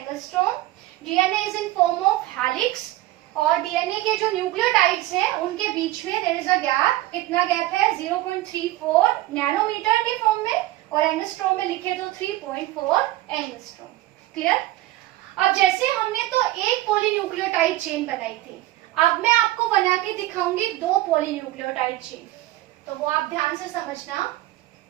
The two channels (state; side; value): quieter; left; 16.5 dB